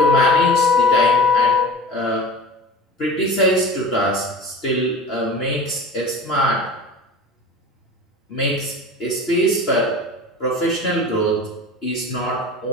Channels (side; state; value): both; normal; correlation 0.36